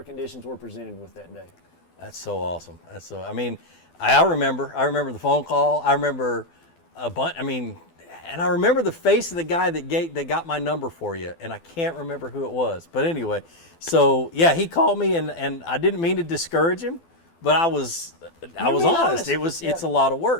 conditions we're presented with that day. That's so awesome. That's so, I mean, I remember the phone call. I remember a bunch, I mean, and I remember the face of the guy that got my number for you, and I can't remember who it was. But anyway, so yeah, he called me, and I didn't mean to discourage him, but I was honest. It's a lot of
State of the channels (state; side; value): late; right; 12 ms